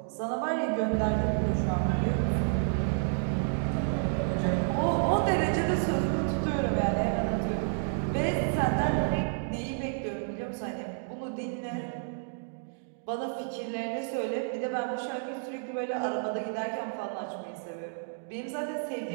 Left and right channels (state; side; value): silent; left; digital silence